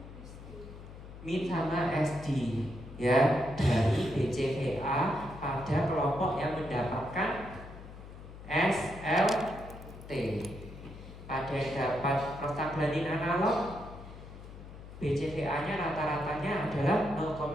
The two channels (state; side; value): noise; left; hum, 14 dB below the sound